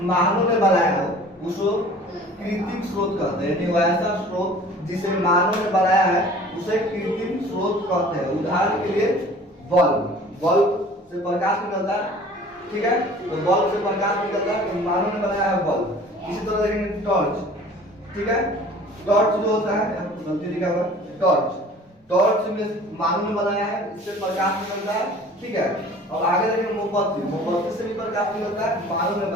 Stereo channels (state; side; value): normal; both; correlation 0.47